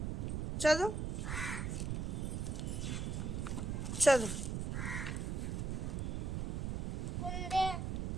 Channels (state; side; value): noise; right; rumble, 1 dB below the sound